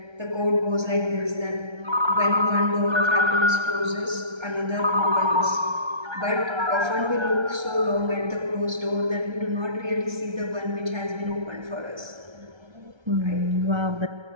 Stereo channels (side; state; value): left; late; 1.3 ms